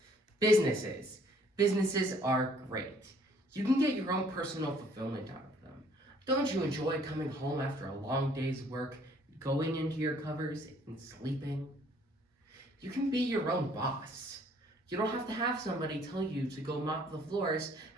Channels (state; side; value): normal; both; correlation 0.61